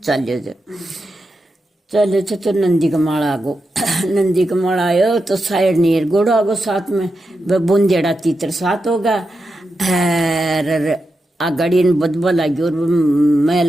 चलियो थे। चले तो नंदी का माड़ा आगो नंदी का माड़ा आयो तो साइड नीर गोड़ो आगो साथ में वह बुंदेड़ा तीतर साथ होगा आ गाड़ी ने बदबा लगी और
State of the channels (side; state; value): both; normal; correlation 0.88